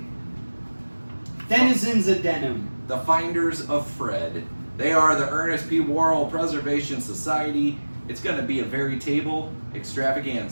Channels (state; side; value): inverted; both; correlation -1.00